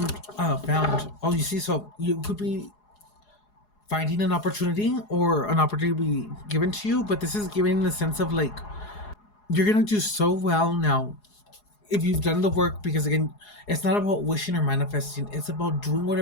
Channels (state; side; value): late; right; 4.8 ms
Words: Oh, you see, so you could be finding an opportunity or an opportunity be given to you, but this is giving the sense of like you're gonna do so well now if you've done the work, because again, it's not about wishing or manifesting, it's about doing